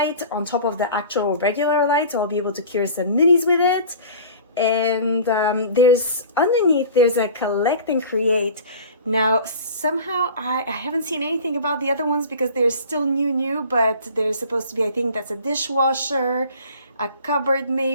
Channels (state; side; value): inverted; both; correlation -0.42